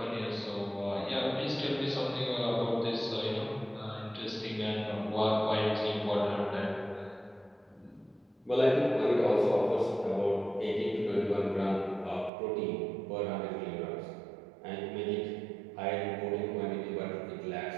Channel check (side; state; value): left; drops out; at 12.3 s